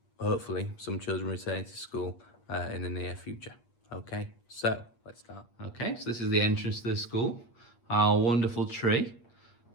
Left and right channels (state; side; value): late; right; 8.5 ms